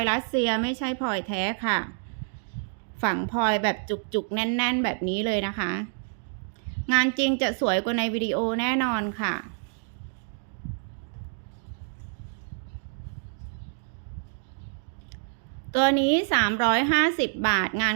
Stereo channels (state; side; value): silent; left; digital silence